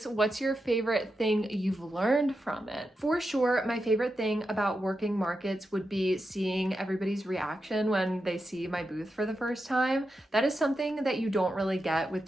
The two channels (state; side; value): normal; both; correlation 0.88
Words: What's your favorite thing you've learned from it? For sure, my favorite thing about working markets would be seeing everybody's reaction when they see my booth for the first time. That is something that you don't really get with